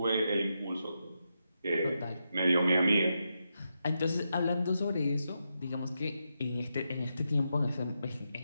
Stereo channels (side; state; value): both; inverted; correlation -0.85